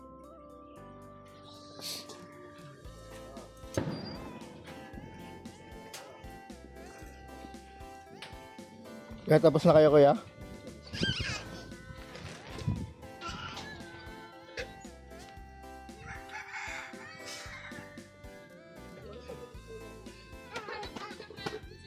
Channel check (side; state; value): both; identical; correlation 1.00